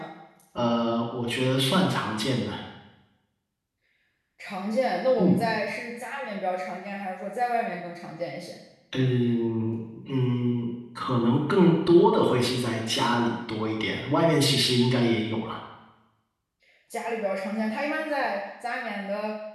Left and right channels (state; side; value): identical; both; correlation 1.00